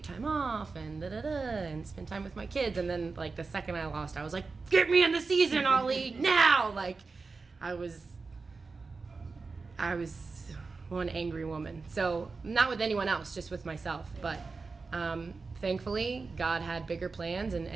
time off and and spend time with my kids, and then like the second I lost, I was like, get me in the season, Ollie, now! Like I was one angry woman. So not with anyone else, just with myself. But thankfully, God had bigger plans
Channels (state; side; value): quieter; left; 4.3 dB